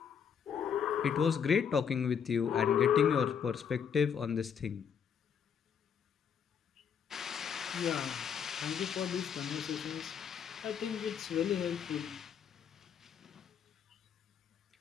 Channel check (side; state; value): right; quieter; 7.4 dB